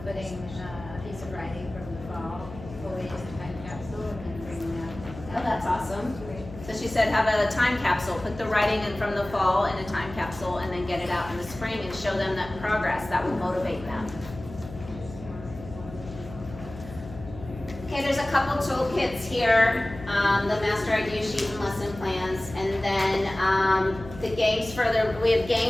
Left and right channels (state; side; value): noise; left; hum, 14 dB below the sound